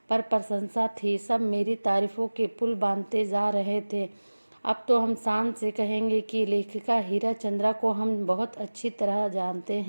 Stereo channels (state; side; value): inverted; both; correlation -1.00